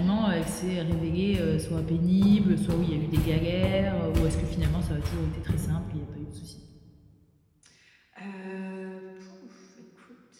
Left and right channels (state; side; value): identical; both; correlation 1.00